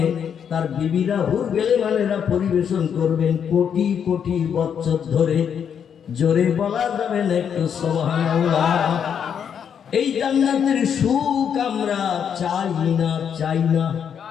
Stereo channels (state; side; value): quieter; right; 7.9 dB